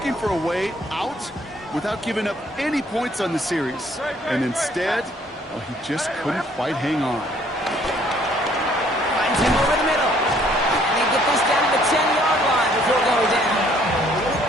for a way out without giving up any points on the series. And instead, well, he just couldn't quite hang on. Finds him over the middle. And they get this down to the 10-yard line before going down.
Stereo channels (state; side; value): normal; both; correlation 0.62